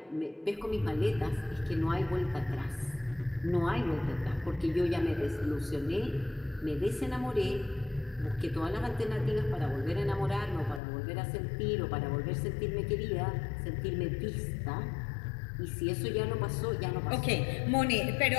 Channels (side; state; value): right; drops out; at 10.8 s